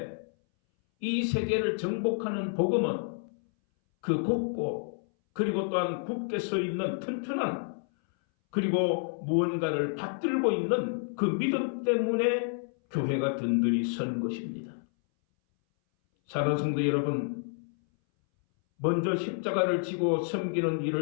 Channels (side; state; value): right; silent; 58 dB below the other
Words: 이 세계를 정복하는 복음은 그 곱고 그리고 또한 굳게 서 있는 튼튼한 그리고 무언가를 받들고 있는 그 믿음 때문에 교회가 든든히 선 것입니다. 사랑하는 성도 여러분, 먼저 십자가를 지고 섬기는